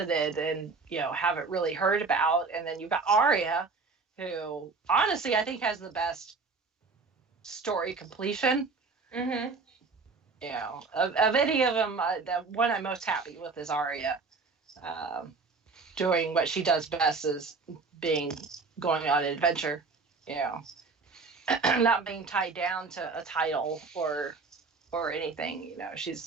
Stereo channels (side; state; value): left; quieter; 4.3 dB